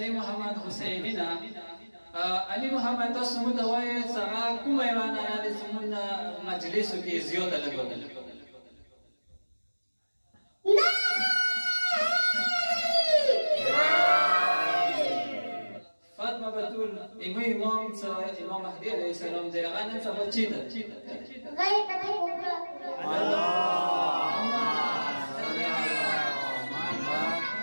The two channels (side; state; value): both; inverted; correlation -1.00